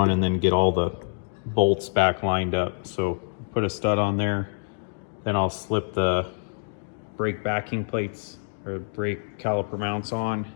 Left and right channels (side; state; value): right; silent; 61 dB below the other